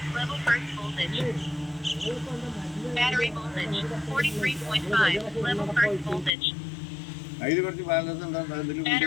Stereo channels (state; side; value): drops out; right; at 6.4 s